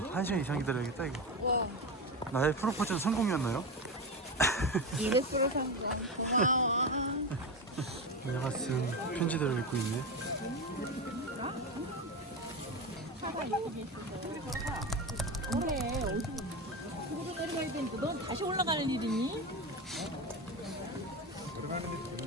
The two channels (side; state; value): both; normal; correlation 0.19